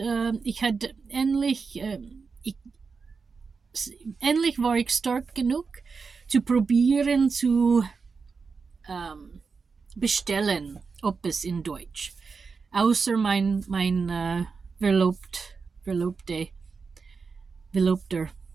ich hatte endlich war ich stark genug zu probieren zu bestellen, etwas in Deutsch. Außer mein Verlobter.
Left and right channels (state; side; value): quieter; left; 5.0 dB